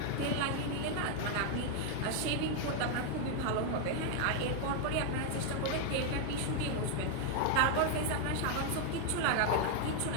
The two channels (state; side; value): different; both; correlation 0.00